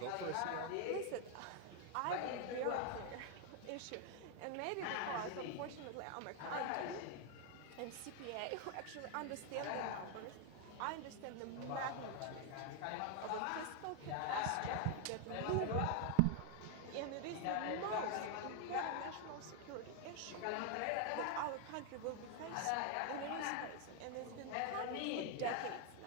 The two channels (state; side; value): different; both; correlation 0.00